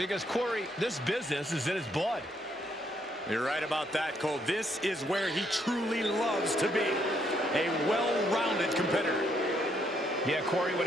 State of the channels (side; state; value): both; normal; correlation 0.72